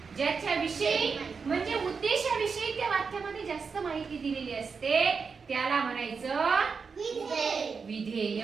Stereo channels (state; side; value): quieter; left; 5.4 dB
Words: ज्याच्याविषयी म्हणजे उद्देशाविषयी त्या वाक्यामध्ये जास्त माहिती दिलेली असते त्याला म्हणायचं विधेय.